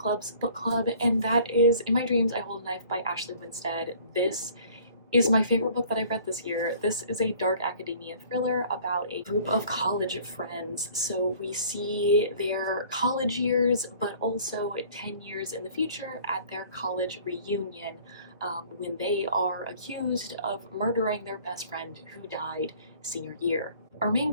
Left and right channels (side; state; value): both; inverted; correlation -0.52